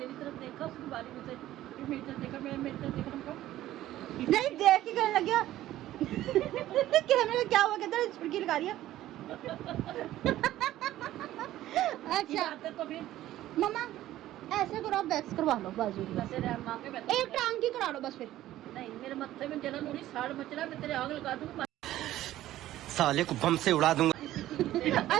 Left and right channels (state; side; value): quieter; left; 14.2 dB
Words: तरफ देखा उसकी बारी में से फिर मेरी तरफ देखा मैं मेरी तरफ देखा हमको नहीं देख के कहने लग गया कैमरे में क्या हुआ कहता है छुड़की लगा रही है अच्छा आते तो फिर मम्मा ऐसे करो आप वैक्स करवा लो बाजू की वैसे रह मां के बैठे एक टांग की करा लो बस फिर नहीं मेरे मत्थे में जलन हो रही साड़ मच रहा मैं तेरे आग लगा दूंगा साले को बम से उड़ा दूंगा।